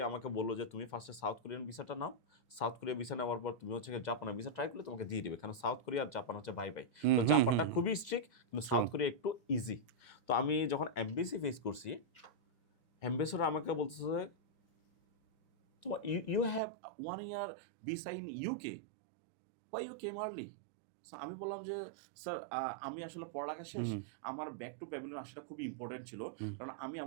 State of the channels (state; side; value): drops out; left; at 16.6 s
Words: আমাকে বললো যে তুমি ফার্স্টে সাউথ কোরিয়ান ভিসাটা নাও, সাউথ কোরিয়া ভিসা নেওয়ার পর তুমি হচ্ছে জাপানের ভিসা ট্রাই করলে তোমাকে দিয়ে দিবে, কারণ সাউথ কোরিয়া আর জাপান হচ্ছে ভাই ভাই। তো জাপানটা খুবই স্ট্রিক্ট, কিন্তু সাউথ কোরিয়া একটু ইজি। তো আমি যখন এমবেসি ফেস করছি, অ্যাম্বাসেডর আমাকে বলতেছে তো you have 1 year visa in UK, why you came early? আমি বললাম যে স্যার আমি আসলে পড়ালেখা শেষ, আমার ব্যাক টু প্যাভিলিয়ন আসাটা খুবই ইম্পর্টেন্ট ছিল, কারণ আমি